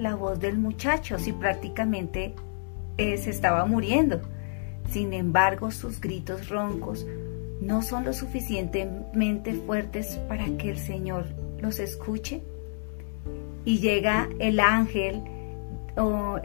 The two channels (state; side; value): silent; right; digital silence